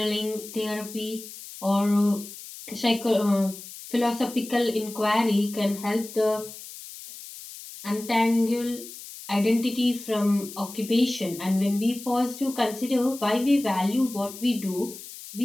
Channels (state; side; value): noise; left; hiss, 14 dB below the sound